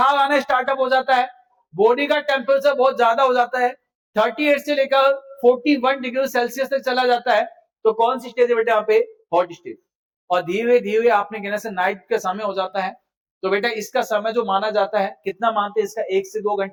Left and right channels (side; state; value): both; identical; correlation 1.00